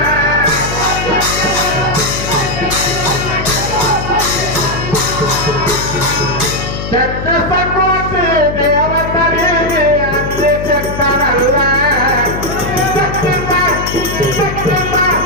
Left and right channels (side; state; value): left; noise; hum, 6 dB below the sound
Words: ಚಕ್ರಸಕೋಟಿ ದೇವತರಿಗೆ ಅಂದೆ ಚಕ್ರನಲ್ಲ